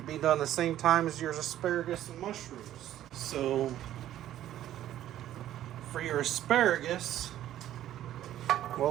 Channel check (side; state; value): left; quieter; 12.4 dB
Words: be done the same time as your asparagus and mushrooms. So for your asparagus,